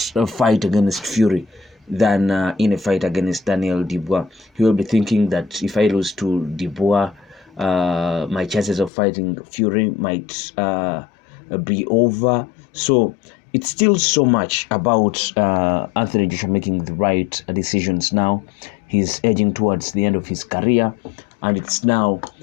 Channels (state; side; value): drops out; right; at 8.9 s